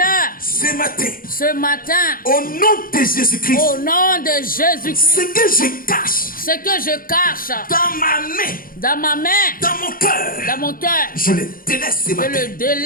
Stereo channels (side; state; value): right; late; 0.41 ms